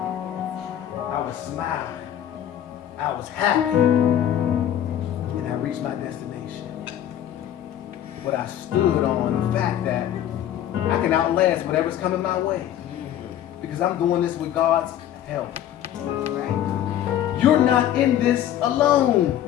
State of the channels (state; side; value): quieter; right; 11.1 dB